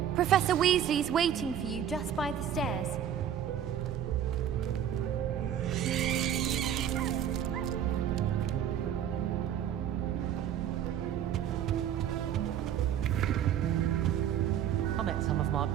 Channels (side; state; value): left; quieter; 9.7 dB